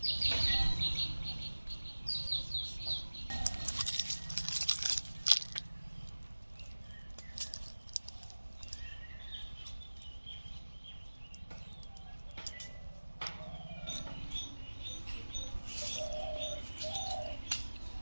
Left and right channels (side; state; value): both; inverted; correlation -1.00